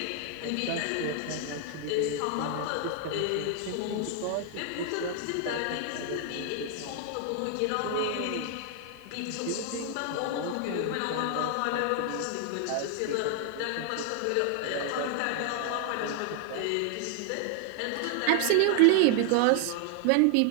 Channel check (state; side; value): different; both; correlation 0.00